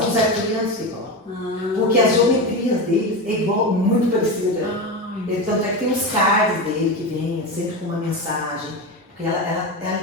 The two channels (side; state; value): both; normal; correlation 0.20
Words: arcturianos que falam. Porque as geometrias deles é igual, muito parecida. Tanto é que tem os cards dele que vêm sempre com uma mensagem. Porque